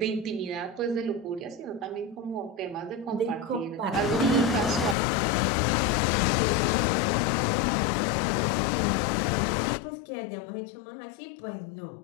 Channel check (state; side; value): drops out; right; at 5.0 s